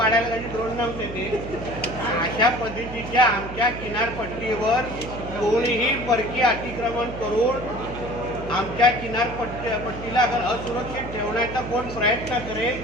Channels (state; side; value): noise; right; hum, 10 dB below the sound